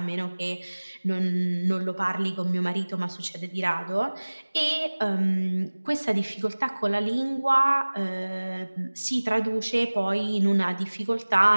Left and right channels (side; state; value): both; inverted; correlation -1.00